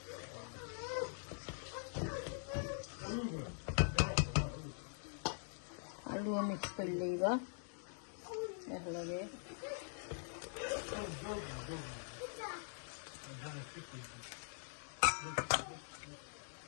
আলু মিক্স করে লইবা একলগে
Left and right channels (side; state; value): right; silent; digital silence